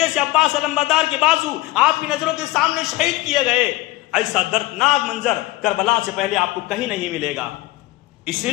سے عباس علمبردار کے بازو آپ کی نظروں کے سامنے شہید کیے گئے، ایسا دردناک منظر کربلا سے پہلے آپ کو کہیں نہیں ملے گا۔ اس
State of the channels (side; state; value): right; quieter; 18.5 dB